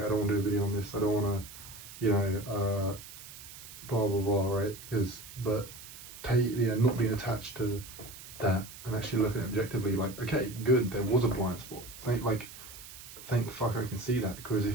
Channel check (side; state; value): right; noise; hiss, 15 dB below the sound